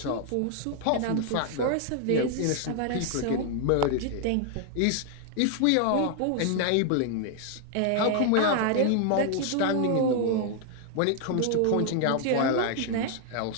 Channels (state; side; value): different; both; correlation 0.00